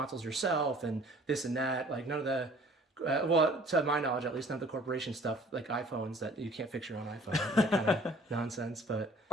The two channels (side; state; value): both; normal; correlation 0.53